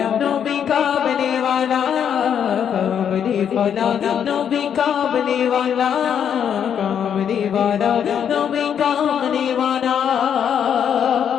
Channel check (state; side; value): quieter; right; 8.5 dB